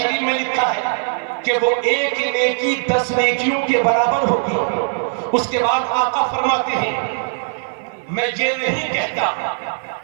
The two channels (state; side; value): silent; left; 66 dB below the other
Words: میں لکھا ہے کہ وہ ایک نیکی 10 نیکیوں کے برابر ہوگی۔ اس کے بعد آقا فرماتے ہیں میں یہ نہیں کہتا